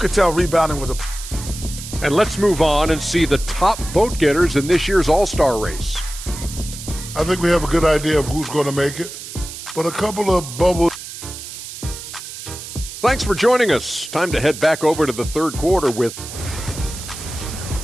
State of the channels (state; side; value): noise; right; hiss, 11 dB below the sound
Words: tell rebounding was a... And let's move on and see the top vote getters in this year's All-Star race. I think we have a good idea of who's going to make it, but a couple of bubbles. Thanks for joining us. Time to head back over to the third quarter with...